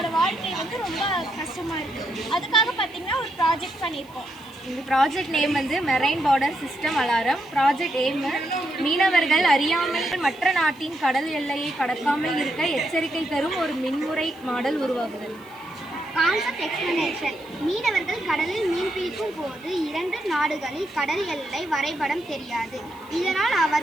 வாழ்க்கை வந்து ரொம்ப கஷ்டமாக இருக்குது. அதுக்காக பார்த்தீங்கன்னா ஒரு ப்ராஜெக்ட் பண்ணியிருக்கோம். இந்த ப்ராஜெக்ட் நேம் வந்து marine border system alarm. Project aim மீனவர்கள் அறியாமல் மற்ற நாட்டின் கடல் எல்லையை கடக்காமல் இருக்க எச்சரிக்கை தரும் ஒரு மின்முறை மாடல் உருவாகுதல். Concept explanation. மீனவர்கள் கடலில் மீன் பிடிக்கும் போது 2 நாடுகளில் கடல் எல்லை வரைபடம் தெரியாது. இதனால்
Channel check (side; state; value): right; noise; hiss, 27 dB below the sound